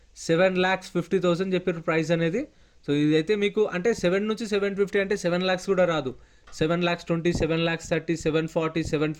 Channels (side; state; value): both; identical; correlation 1.00